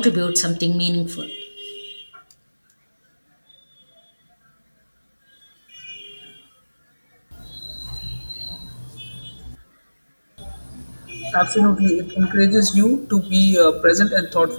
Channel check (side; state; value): both; inverted; correlation -1.00